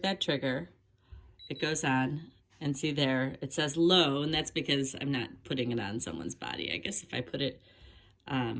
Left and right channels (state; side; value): identical; both; correlation 1.00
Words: that trigger, it goes on, and see there, it says low, and that's because I'm not putting it on someone's body. I guess if I put it